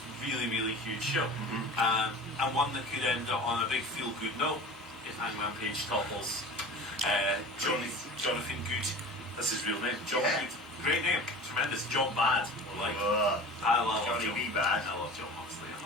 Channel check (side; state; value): both; normal; correlation 0.37